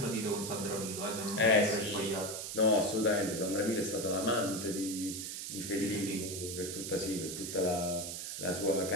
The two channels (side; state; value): right; noise; hiss, 6 dB below the sound